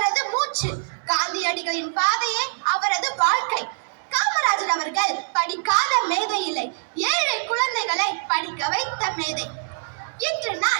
மூச்சு. காந்தியடிகளின் பாதையே அவரது வாழ்க்கை. காமராஜர் அவர்கள் படிக்காத மேதை இல்லை, ஏழை குழந்தைகளை படிக்க வைத்த மேதை. இன்று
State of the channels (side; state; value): left; silent; digital silence